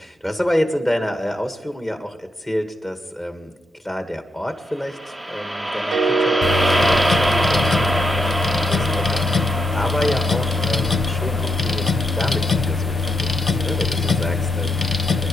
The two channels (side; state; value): both; normal; correlation 0.82